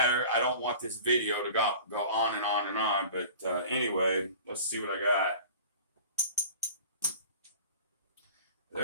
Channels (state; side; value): inverted; both; correlation -0.41